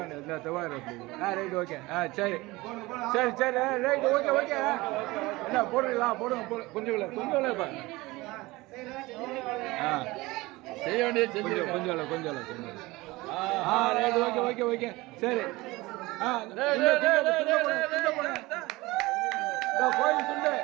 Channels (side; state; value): left; quieter; 21.1 dB